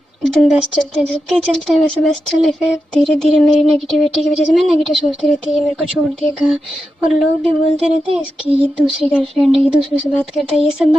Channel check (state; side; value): normal; both; correlation 0.89